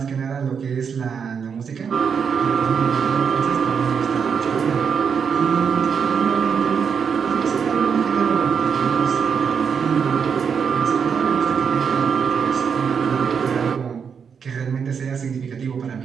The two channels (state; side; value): quieter; left; 6.6 dB